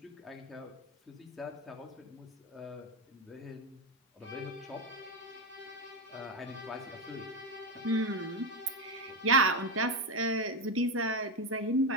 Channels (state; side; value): normal; both; correlation 0.11